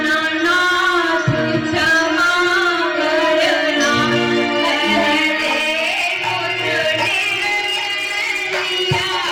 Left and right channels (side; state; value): both; identical; correlation 1.00